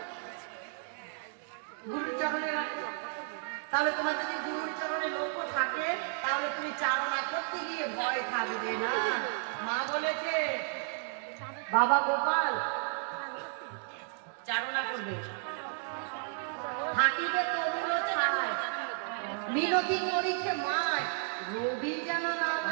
গুরুর চরণে রাখবে। তাহলে তোমার যদি গুরুর চরণে লক্ষ্য থাকে, তাহলে তুমি চারণা করতে গিয়ে ভয় থাকবে না। মা বলেছে বাবা গোপাল চারণা করবে, থাকিবে তরুণ ছায়, মিনতি করিছে মায়, রবি যেন না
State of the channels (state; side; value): silent; left; 55 dB below the other